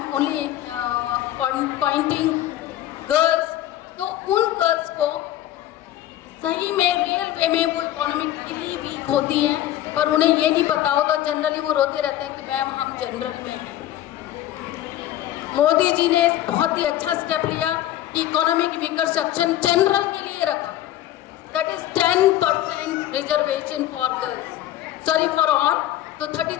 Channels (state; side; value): quieter; right; 13.1 dB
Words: only pointing girls. तो उन गर्ल्स को सही में रियल वे में वो इकोनॉमिकली वीक होती हैं, पर उन्हें ये नहीं पता होता। जनरली वो रोते रहते हैं कि मैम हम जनरल में हैं। मोदी जी ने बहुत ही अच्छा स्टेप लिया कि इकोनॉमिक वीकर सेक्शन जनरल के लिए रखा। That is 10% reservation for girls, sorry for all. तो